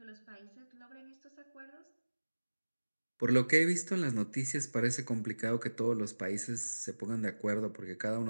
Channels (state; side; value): inverted; both; correlation -1.00